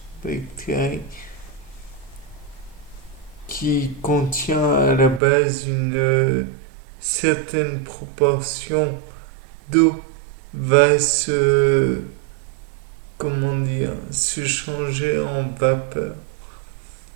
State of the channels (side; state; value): left; drops out; at 5.2 s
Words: bactérie, qui contient à la base une certaine proportion d'eau, va se changer en vapeur.